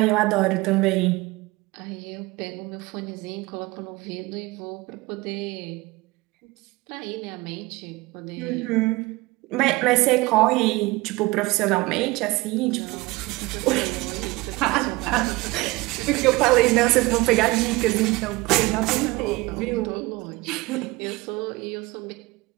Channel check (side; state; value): left; quieter; 22.0 dB